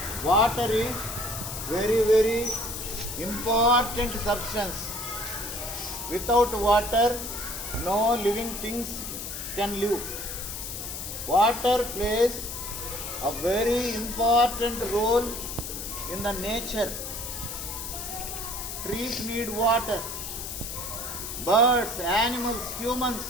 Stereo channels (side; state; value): left; noise; hiss, 7 dB below the sound